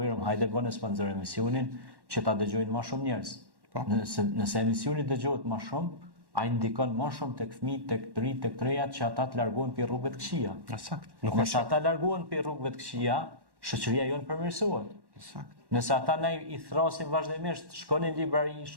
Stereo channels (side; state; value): left; late; 1.1 ms